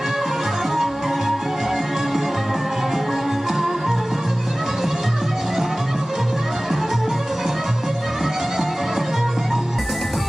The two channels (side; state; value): both; normal; correlation 0.98